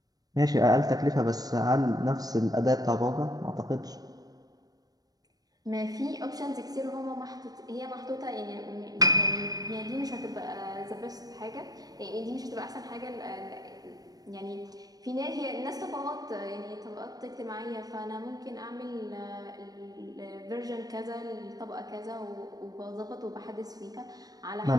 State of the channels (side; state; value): left; late; 0.18 ms